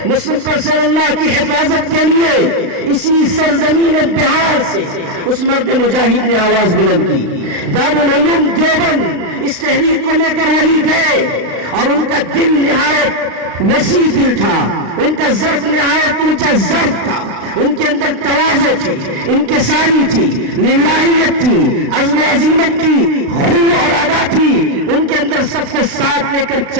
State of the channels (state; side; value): late; left; 35 ms